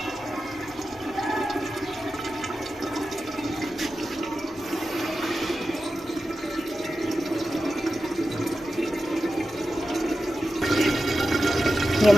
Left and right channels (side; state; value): both; normal; correlation 0.92